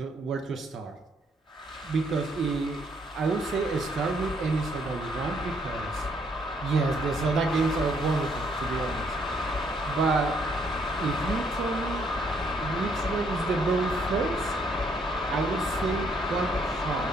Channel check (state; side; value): normal; both; correlation 0.69